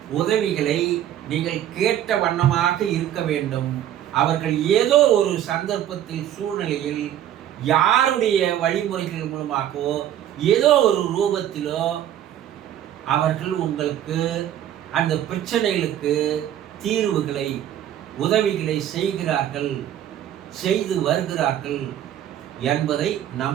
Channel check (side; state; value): left; quieter; 11.2 dB